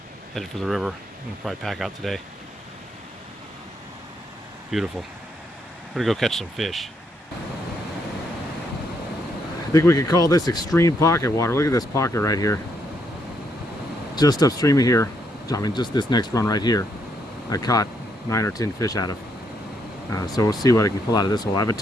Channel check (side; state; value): both; normal; correlation 0.75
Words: headed for the river. I'm gonna probably pack out today. Beautiful. We're gonna go catch some fish. I think we could call this extreme pocket water. Look at this pocket right here. Just upstream of here, I mean just this next run right here, I caught 9 or 10 fish out of. So we'll see what I can pull out of this hole. I haven't